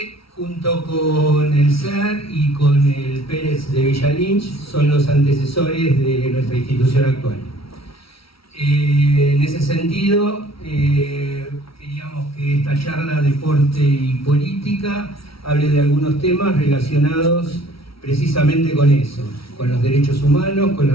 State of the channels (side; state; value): right; late; 0.75 ms